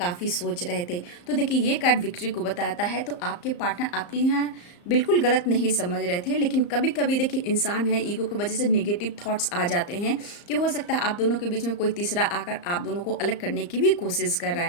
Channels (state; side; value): late; right; 34 ms